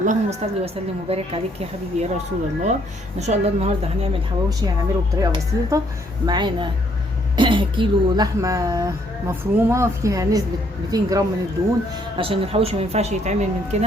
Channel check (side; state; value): both; normal; correlation 0.68